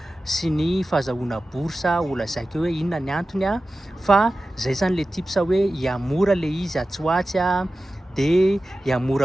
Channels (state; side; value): normal; both; correlation 0.95